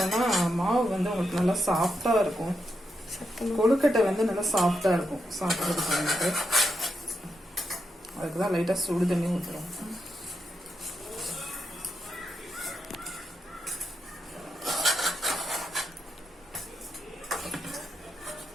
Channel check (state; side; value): normal; both; correlation 0.84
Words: மாவு உங்களுக்கு நல்லா சாஃப்டாக இருக்கும். கொழுக்கட்டை நல்லா சாஃப்டாக இருக்கும் சாப்பிட்றதுக்கு. அதுக்கு தான் லைட்டாக சுடு தண்ணி ஊற்றுறோம்.